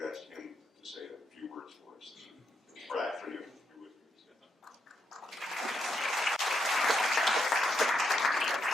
asked him to say a few words for us. Brad, for you.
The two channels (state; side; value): normal; both; correlation 0.80